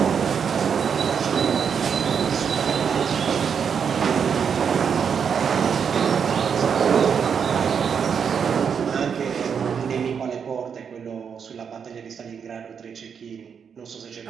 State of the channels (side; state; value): left; quieter; 7.0 dB